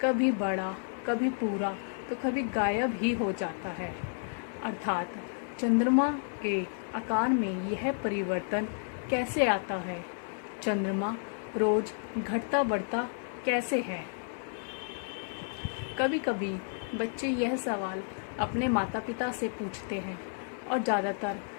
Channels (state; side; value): silent; right; digital silence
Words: कभी बड़ा, कभी पूरा, तो कभी गायब ही हो जाता है। अर्थात चंद्रमा के आकार में यह परिवर्तन कैसे आता है। चंद्रमा रोज घटता बढ़ता कैसे है। कभी कभी बच्चे यह सवाल अपने माता पिता से पूछते हैं और ज़्यादातर